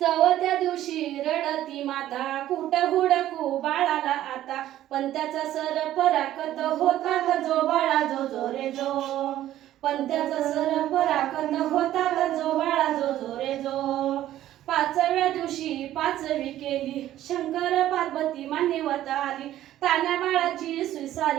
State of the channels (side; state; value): left; quieter; 13.1 dB